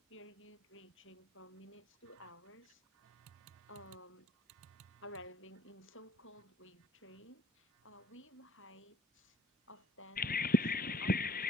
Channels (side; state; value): both; normal; correlation 0.60